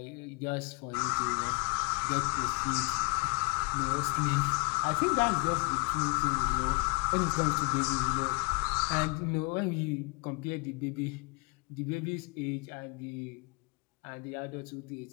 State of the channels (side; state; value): right; quieter; 29.5 dB